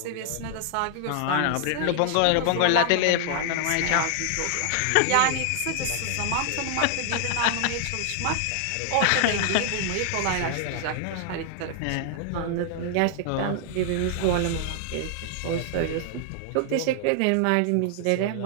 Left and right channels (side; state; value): both; different; correlation 0.00